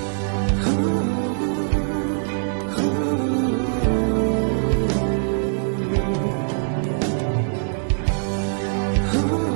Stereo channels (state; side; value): silent; left; digital silence